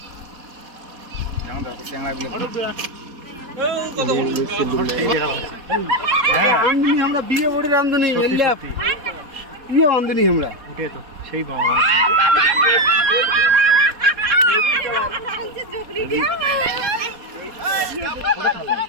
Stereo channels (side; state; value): left; late; 4.2 ms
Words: কেমন দেখো চ্যাংড়াগুলো আমরা বিয়ে বড়ি রান্ধনি বিয়ে রান্ধনি আমরা তো সেই